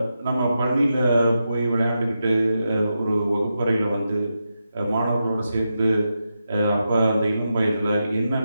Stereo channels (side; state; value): both; inverted; correlation -0.87